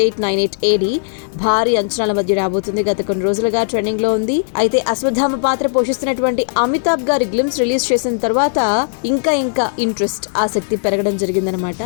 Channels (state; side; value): silent; right; digital silence